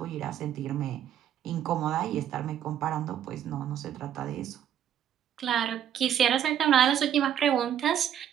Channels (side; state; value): left; quieter; 9.9 dB